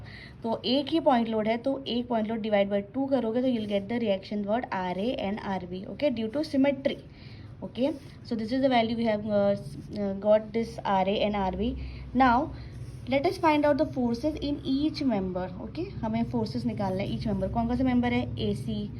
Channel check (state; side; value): identical; both; correlation 1.00